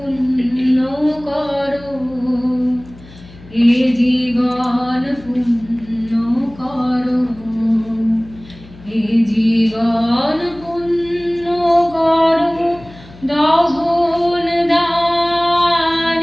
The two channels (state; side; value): noise; left; hum, 21 dB below the sound